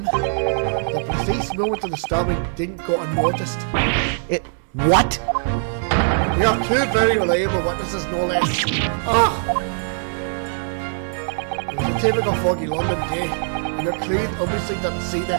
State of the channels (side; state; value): left; silent; digital silence